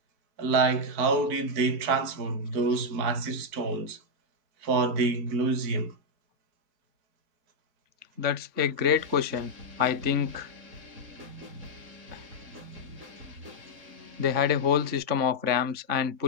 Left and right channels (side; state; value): left; late; 4.6 ms